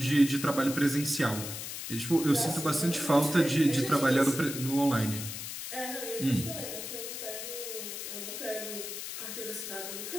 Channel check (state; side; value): noise; left; hiss, 7 dB below the sound